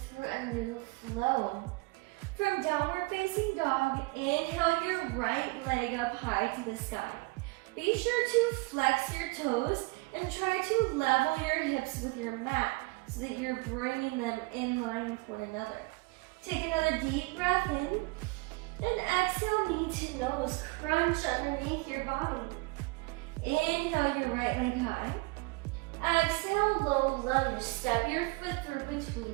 a new flow. From downward facing dog, inhale your right leg up high to the sky. Be sure to flex your toes and try to level your hips with your mat so that you're bringing them in line with one another. Take another deep breath in and exhale, knee to nose, crunch underneath your body. Inhale your right leg high. Exhale, low lunge, step your foot through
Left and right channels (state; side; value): quieter; left; 25.6 dB